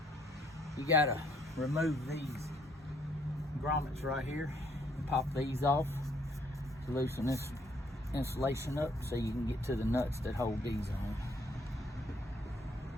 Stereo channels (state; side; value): normal; both; correlation 0.67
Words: You gotta remove these grommets right here and pop these off to loosen this insulation up so you can get to the nuts that hold these on.